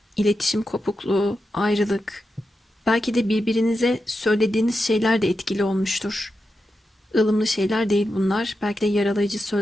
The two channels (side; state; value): both; normal; correlation 0.89